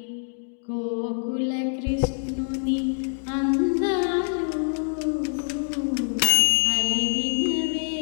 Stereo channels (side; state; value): right; silent; digital silence